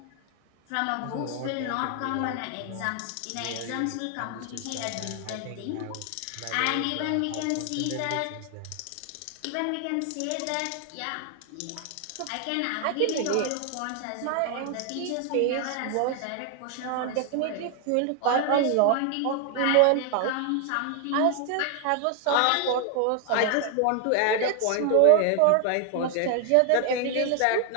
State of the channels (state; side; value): different; both; correlation 0.00